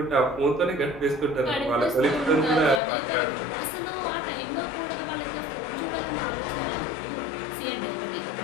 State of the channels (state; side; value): drops out; right; at 2.8 s